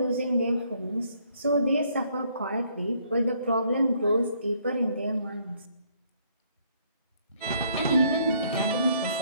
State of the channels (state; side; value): inverted; both; correlation -0.67